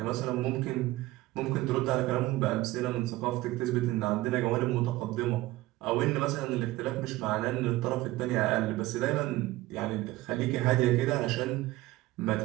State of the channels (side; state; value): left; quieter; 17.9 dB